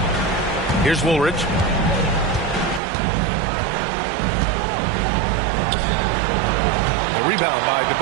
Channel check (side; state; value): left; drops out; at 2.8 s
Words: Here's Woolridge. The rebound by